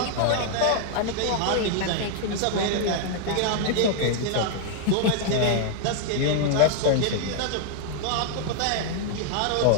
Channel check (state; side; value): different; both; correlation 0.00